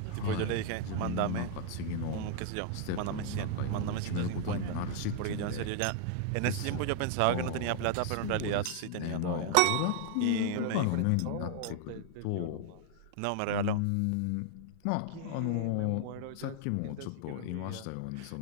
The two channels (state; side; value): different; both; correlation 0.00